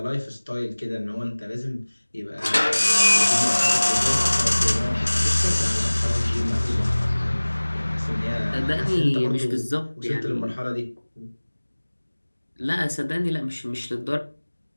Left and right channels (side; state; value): both; inverted; correlation -1.00